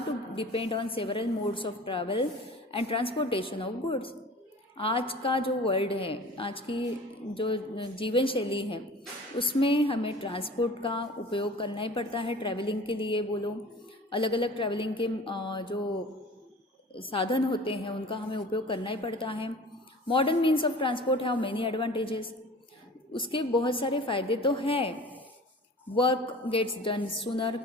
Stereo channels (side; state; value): both; normal; correlation 0.42